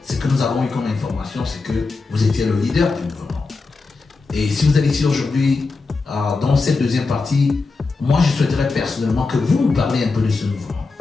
ce que nous avons eu comme information, c'est que vous étiez le leader du mouvement. Et si vous êtes ici aujourd'hui, dans cette deuxième partie, moi je souhaiterais personnellement que vous nous parliez un peu de ce mouvement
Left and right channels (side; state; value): right; quieter; 4.0 dB